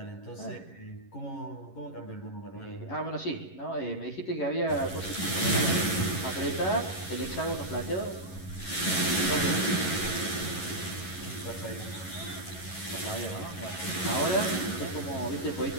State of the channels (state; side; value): late; right; 11 ms